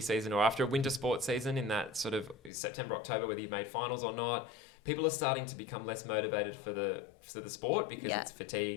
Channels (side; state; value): right; drops out; at 2.5 s